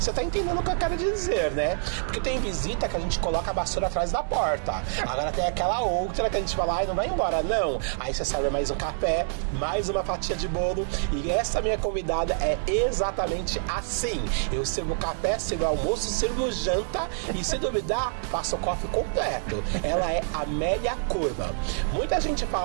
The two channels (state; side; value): silent; left; digital silence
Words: tá entendendo o que eu quero dizer, né? Porque tem visita que a gente coloca a vassoura atrás da porta. Agora tem aquela outra que a gente fala, ai, não vai embora, não. Aí você serve mais um café, mais uma fatia de bolo. E essa minha convidada é exatamente assim. Eu sirvo café, sirvo almoço, sirvo janta e, se duvidar, faço o coffee completo. Ela é Amélia Kurman. Muita gente